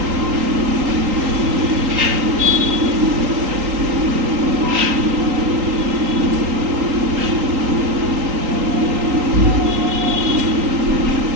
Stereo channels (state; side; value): late; left; 3.8 ms